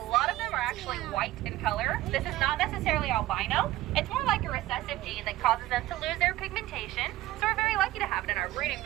of them are actually white in color. This is not necessarily albino. It's more like a recessive gene that causes them to lose their pigmentation. So we're very lucky to have it in our breeding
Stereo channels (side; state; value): left; quieter; 16.0 dB